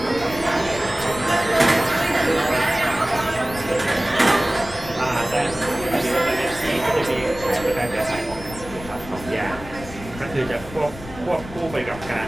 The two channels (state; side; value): noise; left; rumble, 15 dB below the sound